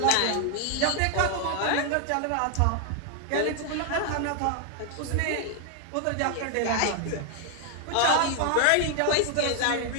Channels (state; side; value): different; both; correlation 0.01